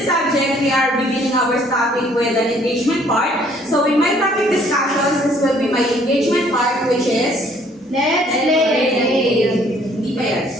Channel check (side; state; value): both; normal; correlation 0.61